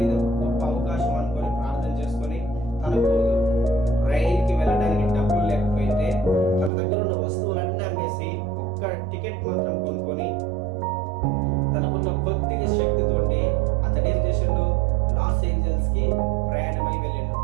ఇది ఒక గొప్ప అవకాశం అనుకొని ప్రార్థన చేసుకొని, తనకు రైలుకి వెళ్ళడానికి డబ్బులు లేకపోయింటే తన దగ్గర ఉన్న వస్తువులన్నీ అమ్మేసి ఒక్క టికెట్ మాత్రం కొనుక్కొని తనకున్న కొద్దిగా శక్తితోటి అతను ఏం చేసిండు, లాస్ ఏంజల్స్ కి ప్రయాణమై వెళ్ళిండు.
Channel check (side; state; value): left; drops out; at 6.7 s